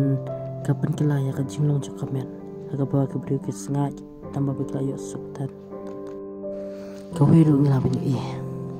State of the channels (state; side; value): identical; both; correlation 1.00